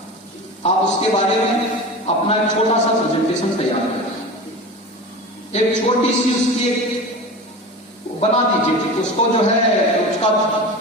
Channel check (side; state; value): both; normal; correlation 0.31